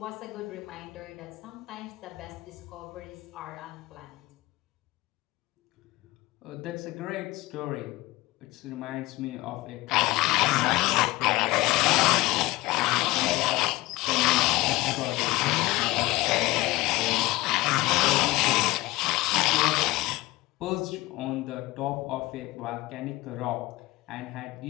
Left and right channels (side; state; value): right; quieter; 19.8 dB